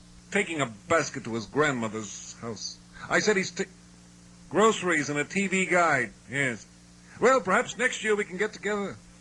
taking a basket to his grandmother's house. I said he's groceries and a TV guide. Yes. Well, perhaps next year we can get together.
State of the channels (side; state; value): both; identical; correlation 1.00